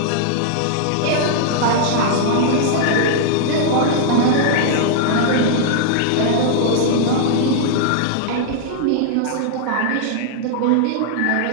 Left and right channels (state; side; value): different; both; correlation -0.01